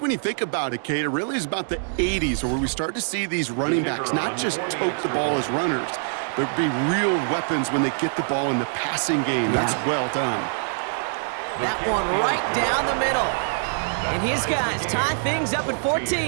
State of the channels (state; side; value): silent; left; 62 dB below the other